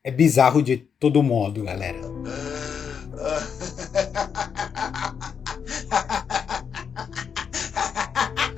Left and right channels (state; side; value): quieter; right; 7.0 dB